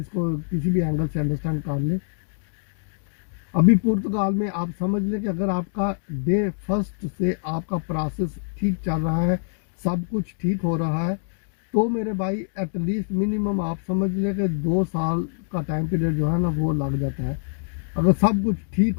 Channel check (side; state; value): right; silent; digital silence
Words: किसी भी एंगल से अंडरस्टैंड कर लें। अभी पुर्तगाल में आप समझ लें कि अगर आपका डे फर्स्ट से आपका प्रोसेस ठीक चल रहा है, सब कुछ ठीक हो रहा है, तो मेरे भाई एटलीस्ट मिनिमम आप समझ लें कि 2 साल का टाइम पीरियड जो है ना वो लग जाता है। अगर सब कुछ ठीक